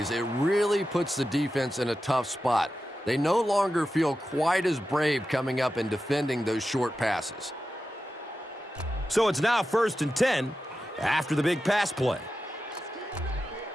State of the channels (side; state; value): both; normal; correlation 0.92